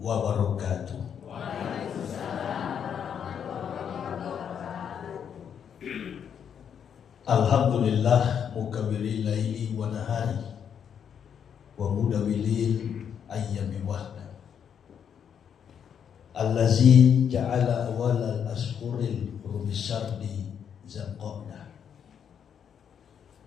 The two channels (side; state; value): right; quieter; 8.0 dB